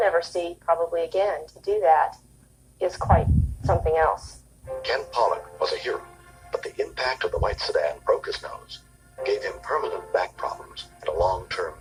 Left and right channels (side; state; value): both; identical; correlation 1.00